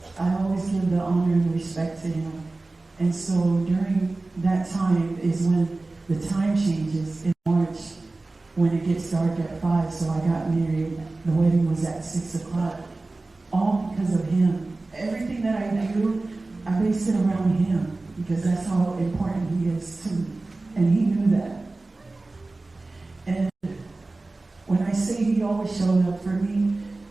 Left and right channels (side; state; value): left; quieter; 3.2 dB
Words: I always give the honor and respect to him. And so during that time is when the time changes in March, when it gets dark at 5. So I got married. The wedding was at 6 o'clock. All because of him. Everything that I do, I base it around him because that's how important he is to me. And he knew that. And when I say he always showed up for me,